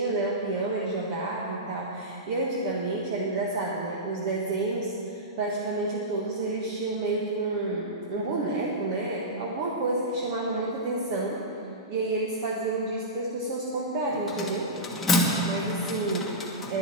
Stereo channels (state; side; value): normal; both; correlation -0.15